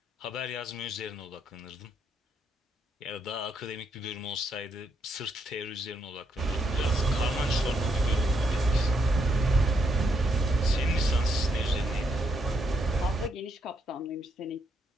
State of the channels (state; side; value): normal; both; correlation 0.77